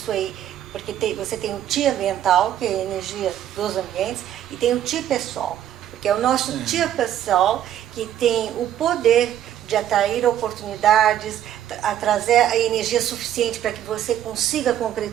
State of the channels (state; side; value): quieter; left; 11.1 dB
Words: porque você tem o Qi ambiental, que é a energia dos ambientes, e tem o Qi pessoal, porque é o nosso Qi pessoal que tem o poder de atrair oportunidades, a trazer a energia suficiente para que você consiga